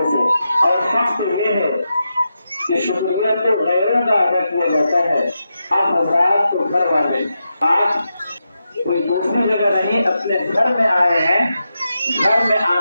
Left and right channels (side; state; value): both; inverted; correlation -0.88